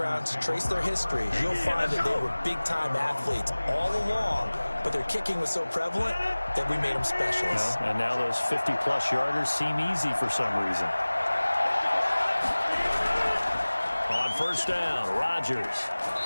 trace their history. You'll find that they were big-time athletes all along, but their kicking was so prevalent that we made them specialists. And now those 50-plus yarders seem easy for some reason. On first down, Rodgers.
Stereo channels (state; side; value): inverted; both; correlation -1.00